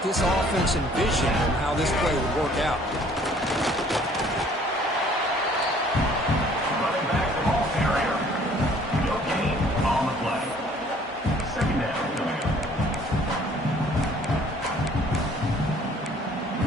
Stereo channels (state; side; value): normal; both; correlation 0.56